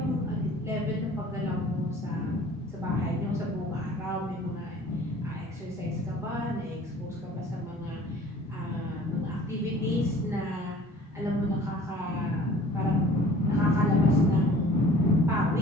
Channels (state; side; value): normal; both; correlation 0.49